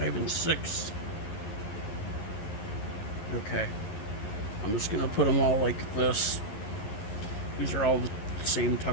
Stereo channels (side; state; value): right; late; 11 ms